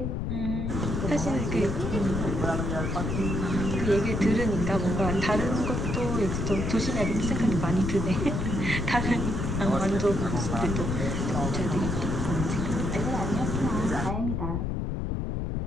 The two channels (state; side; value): noise; left; rumble, 1 dB below the sound